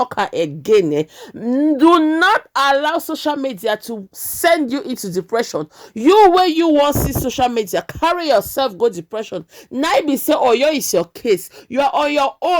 again. Do not allow social media to send you into depression. You where you want see social media, carry yourself go depression. Now be say oh yo is your case, you are on your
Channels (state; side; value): identical; both; correlation 1.00